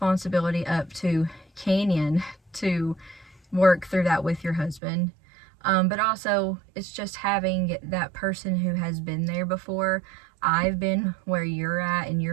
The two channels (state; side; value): drops out; left; at 4.8 s